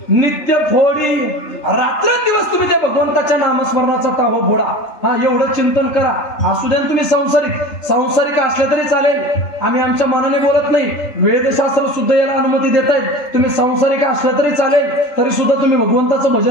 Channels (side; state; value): right; late; 3.3 ms